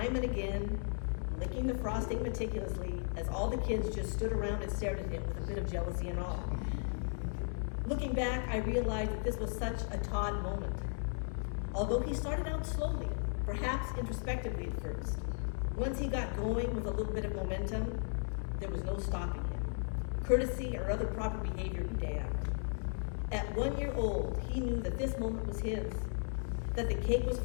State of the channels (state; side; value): silent; right; 54 dB below the other